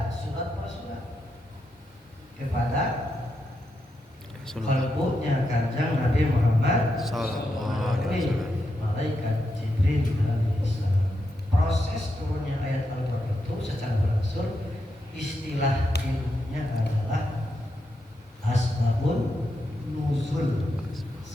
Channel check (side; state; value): both; normal; correlation 0.84